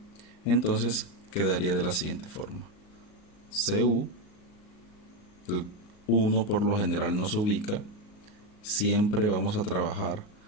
entonces quedaría de la siguiente forma: Cu, el 1 por lo general no se ubica, siempre vamos a trabajar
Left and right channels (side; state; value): right; late; 38 ms